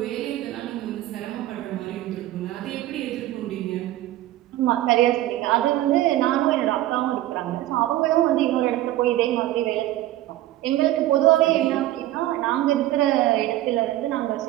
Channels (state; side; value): quieter; left; 15.0 dB